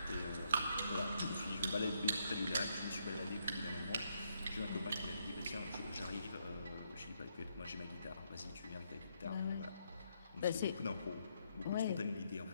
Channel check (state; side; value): inverted; both; correlation -0.76